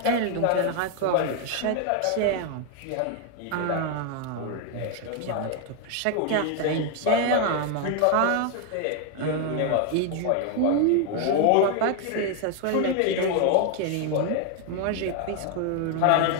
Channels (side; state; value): both; different; correlation 0.01